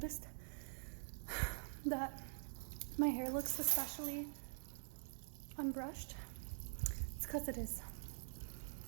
that my hair looks especially unbrushed. It's because it is.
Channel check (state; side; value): silent; left; digital silence